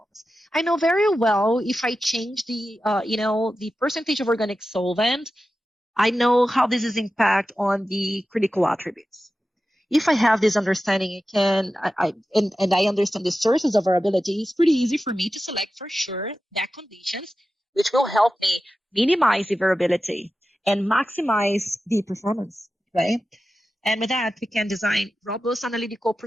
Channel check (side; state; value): both; normal; correlation 0.93